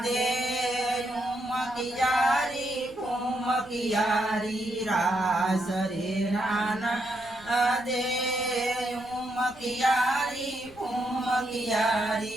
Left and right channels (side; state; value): left; noise; rumble, 22 dB below the sound